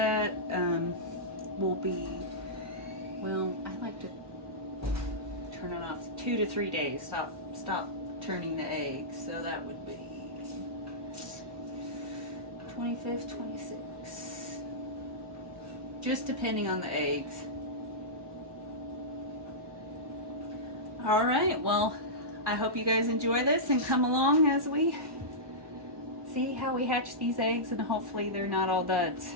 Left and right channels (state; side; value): late; left; 1.2 ms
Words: will be, well, I like to turn it off 2 to 3 days. Stop turning the eggs. So that would be 25th, 26th. Just depending on the eggs. All right, well, I hope you guys enjoy this and come along as we see how we hatch these eggs, and hopefully they're not all duds.